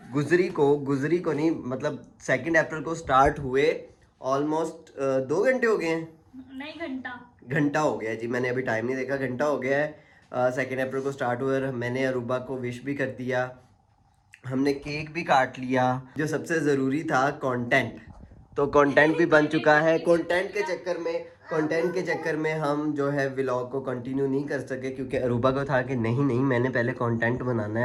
गुजरी को नहीं, मतलब 2 अप्रैल को स्टार्ट हुए। ऑलमोस्ट 2 घंटे हो गए हैं। नहीं, घंटा हो गया जी, मैंने अभी टाइम नहीं देखा, घंटा हो गया है। 2 अप्रैल को स्टार्ट हुआ और मैंने अरूबा को विश भी कर दिया, हमने केक भी काट लिया। जो सबसे ज़रूरी था कंटेंट, तो कंटेंट भी बन चुका है। कंटेंट के चक्कर में हम जो है व्लॉग को कंटिन्यू नहीं कर सके, क्योंकि अरूबा को था कि नहीं मैंने पहले कंटेंट बनाना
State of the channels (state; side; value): identical; both; correlation 1.00